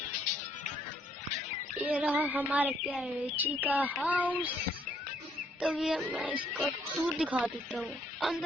ये रहा हमारे प्यारे रिची का हाउस। तो ये मैं इसका टूर दिखा देता हूँ।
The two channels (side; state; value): both; normal; correlation 0.68